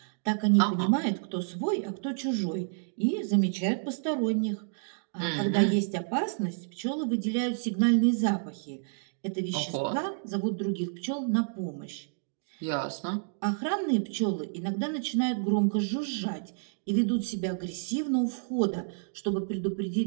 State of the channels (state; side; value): silent; left; digital silence